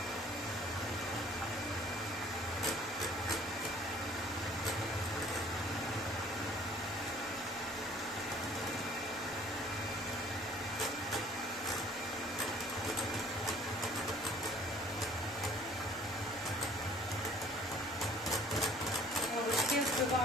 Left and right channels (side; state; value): both; normal; correlation 0.54